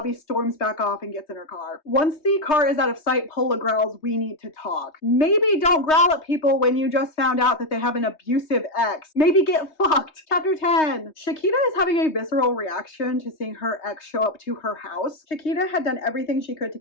storms back off and gets in her car. Once the car is out of sight, Pola growls, "We need to talk." Maybe don't growl at people when you just found out that they have an abusive ex. Maybe get fucked. Chapter 10. Shakita is having a visceral reaction to seeing her ex show up to her house. Shakita had done everything she could to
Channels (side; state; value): right; late; 3.2 ms